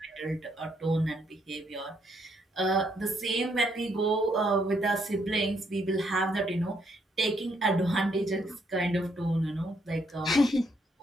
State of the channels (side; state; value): both; normal; correlation 0.73